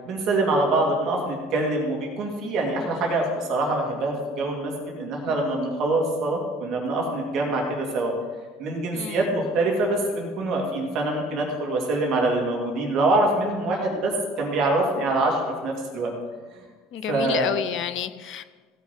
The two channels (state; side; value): normal; both; correlation 0.51